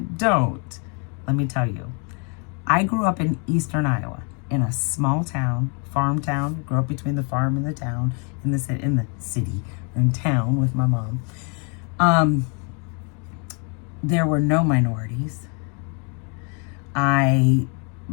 don't, let me tell you, I grew up in eastern Iowa in a small town, farm town. Grew up between the farm and the town, in the city, or in town with my mom. There were no minorities. By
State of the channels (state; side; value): quieter; right; 36.7 dB